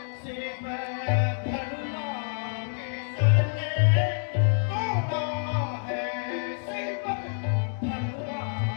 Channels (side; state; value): right; silent; 58 dB below the other